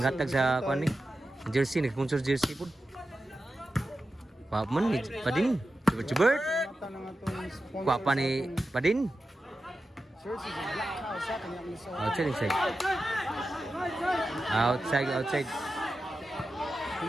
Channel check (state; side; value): normal; both; correlation 0.92